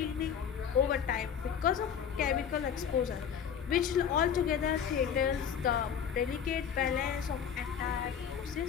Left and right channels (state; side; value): quieter; right; 8.0 dB